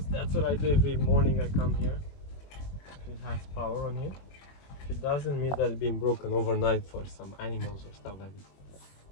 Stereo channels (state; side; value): late; right; 21 ms